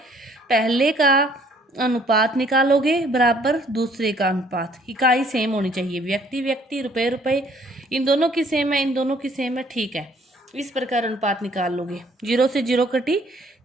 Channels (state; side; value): normal; both; correlation 0.61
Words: पहले का अनुपात निकालोगे बराबर दूसरे का अनुपात, इकाई सेम होनी चाहिए, व्यक्ति व्यक्ति, रुपए रुपए, इन दोनों की सेम है, इन दोनों की सेम है, ठीक है। इस प्रकार अनुपात निकाल लोगे। 0 से 0 कटी,